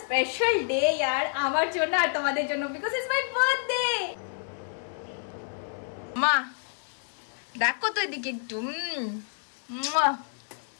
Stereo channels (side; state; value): right; silent; digital silence